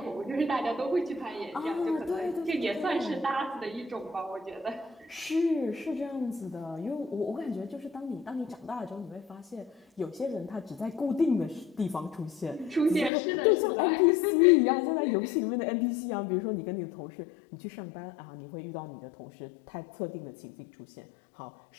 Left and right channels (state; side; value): drops out; right; at 13.1 s